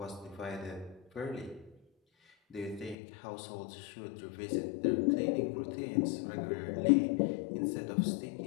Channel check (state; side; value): drops out; right; at 3.0 s